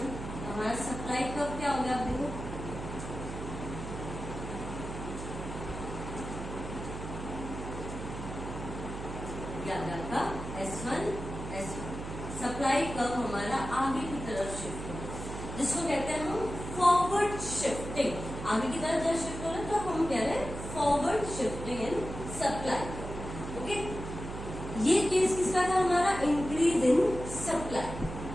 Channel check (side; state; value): right; noise; hum, 8 dB below the sound